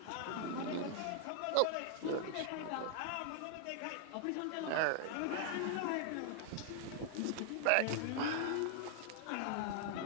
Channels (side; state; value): both; different; correlation 0.00